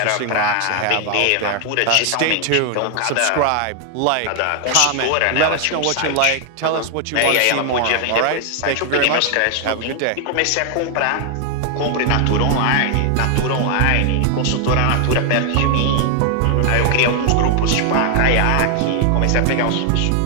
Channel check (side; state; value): both; different; correlation 0.00